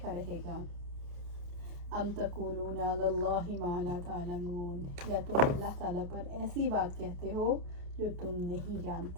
رہے گا۔ ام تقولون علی اللہ ما لا تعلمون، یا تم اللہ تعالیٰ پر ایسی بات کہتے ہو جو تم نہیں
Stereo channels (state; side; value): late; left; 29 ms